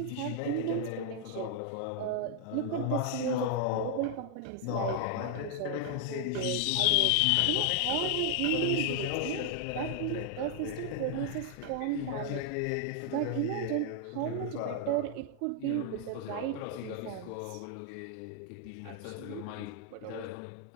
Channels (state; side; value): different; both; correlation 0.00